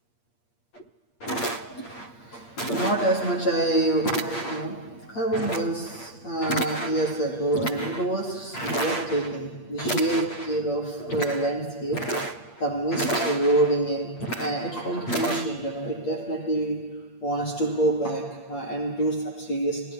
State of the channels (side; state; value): right; late; 8.5 ms